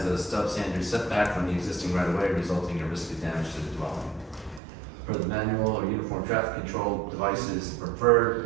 a substandard setback from the existing right-of-way, resulting in a risk of damage to the dwelling. Per the manual or uniform traffic control devices, the preferred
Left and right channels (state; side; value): drops out; left; at 4.6 s